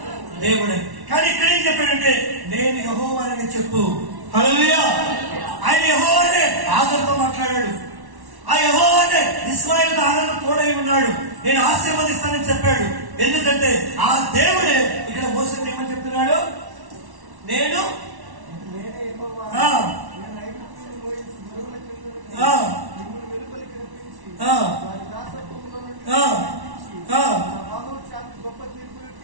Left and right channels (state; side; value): late; left; 1.1 ms